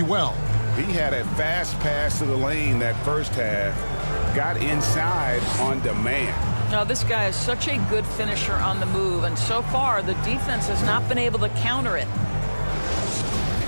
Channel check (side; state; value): both; inverted; correlation -1.00